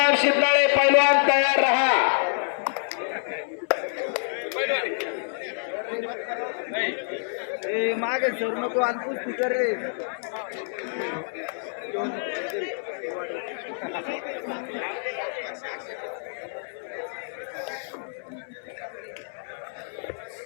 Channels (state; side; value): silent; right; 60 dB below the other